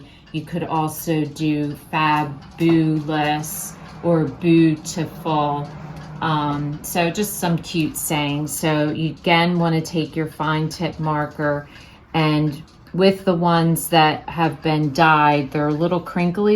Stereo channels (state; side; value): identical; both; correlation 1.00